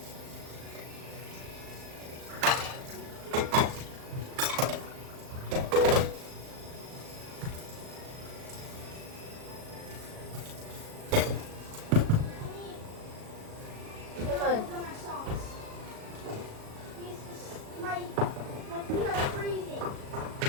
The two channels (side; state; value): left; late; 37 ms